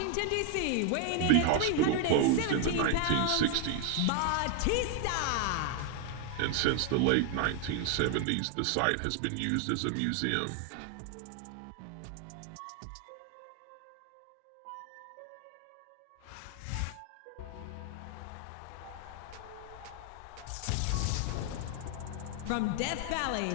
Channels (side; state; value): both; different; correlation 0.00